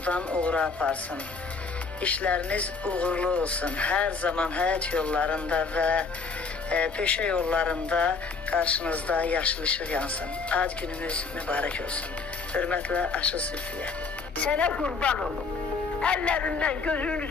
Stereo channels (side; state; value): right; quieter; 4.6 dB